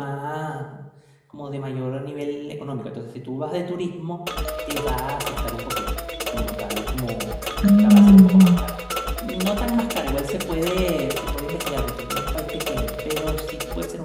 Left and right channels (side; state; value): both; identical; correlation 1.00